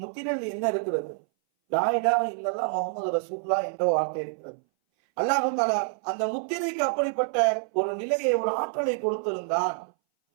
என்ன இருக்கிறது? லா இலாஹ இல்லல்லாஹ் முஹம்மது ரசூலுல்லாஹ் என்ற வார்த்தை இருக்கிறது. அல்லாஹ் தஆலா அந்த முத்திரைக்கு அப்படிப்பட்ட ஒரு நிலையை, ஒரு ஆற்றலை கொடுத்திருந்தான்.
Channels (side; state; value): left; silent; 58 dB below the other